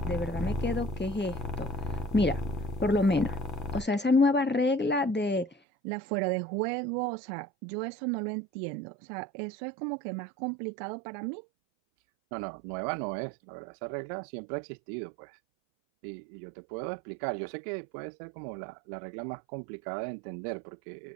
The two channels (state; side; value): drops out; left; at 5.6 s